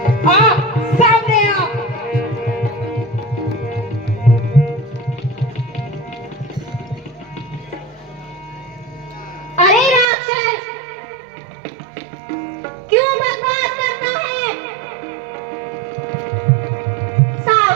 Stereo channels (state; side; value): drops out; left; at 10.1 s